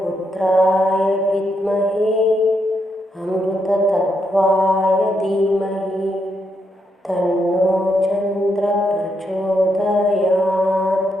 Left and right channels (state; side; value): normal; both; correlation 0.79